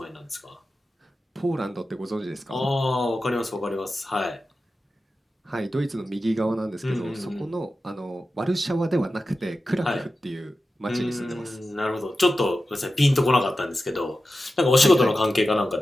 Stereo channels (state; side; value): normal; both; correlation 0.93